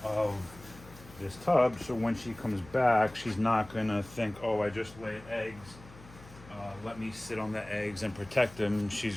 of this tub. So when she comes back, she's not gonna think, oh, I just laid eggs. Let me sit on the eggs and protect them.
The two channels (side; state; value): left; noise; hum, 20 dB below the sound